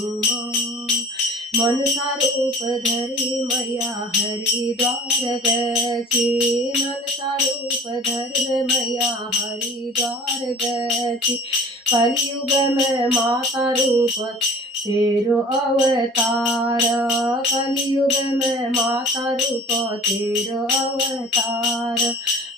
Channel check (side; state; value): both; normal; correlation 0.44